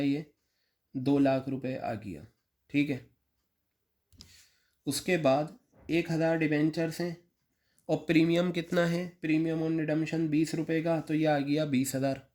ये 2 लाख रुपये आ गया, ठीक है। उसके बाद 1000 डिबेंचर्स हैं और प्रीमियम कितना है, प्रीमियम ऑन रिडम्पशन 20 रुपये का, तो ये आ गया 20,000।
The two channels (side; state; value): both; identical; correlation 1.00